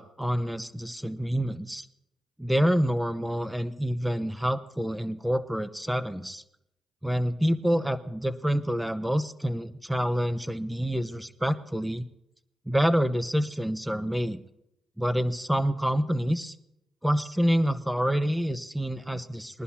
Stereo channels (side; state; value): both; normal; correlation 0.97